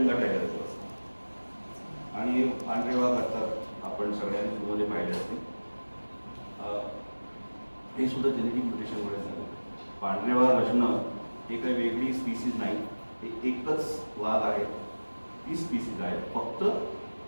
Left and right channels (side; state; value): both; inverted; correlation -1.00